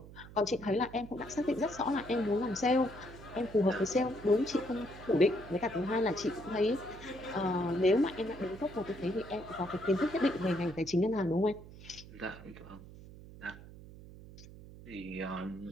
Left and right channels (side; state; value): right; noise; hum, 17 dB below the sound